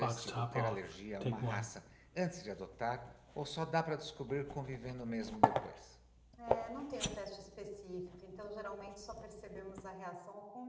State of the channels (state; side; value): identical; both; correlation 1.00